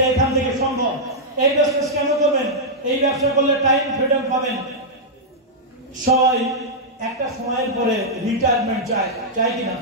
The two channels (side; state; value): both; normal; correlation -0.08